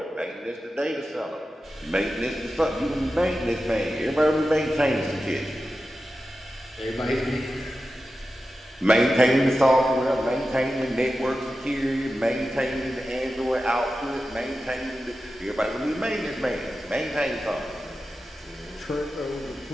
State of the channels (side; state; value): both; normal; correlation 0.92